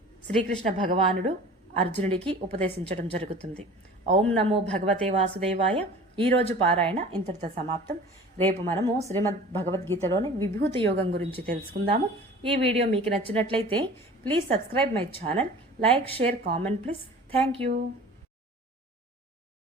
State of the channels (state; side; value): normal; both; correlation 0.42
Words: శ్రీకృష్ణ భగవానుడు అర్జునుడికి ఉపదేశించడం జరుగుతుంది. ఓం నమో భగవతే వాసుదేవాయ. ఈరోజు పారాయణ ఇంతటితో సమాప్తం. రేపు మనము శ్రీమద్ భగవద్గీతలోని విభూతి యోగం గురించి తెలుసుకుందాము. ఈ వీడియో మీకు నచ్చినట్లయితే please subscribe my channel, like, share, comment please. Thank you.